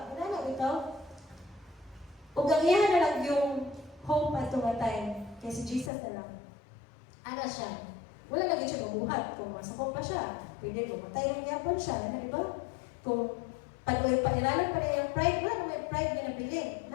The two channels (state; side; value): drops out; right; at 5.9 s